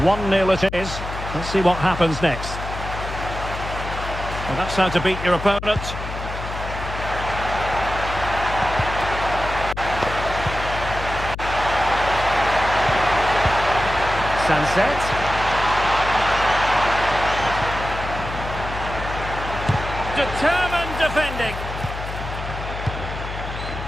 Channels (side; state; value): left; noise; hum, 8 dB below the sound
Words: 1-0 it is. Let's see what happens next. Well, that's how to beat your opponent. Sunset. Determined defending.